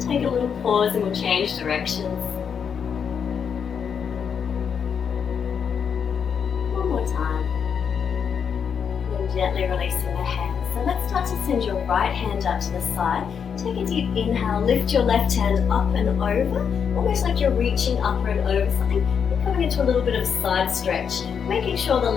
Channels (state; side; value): quieter; right; 7.1 dB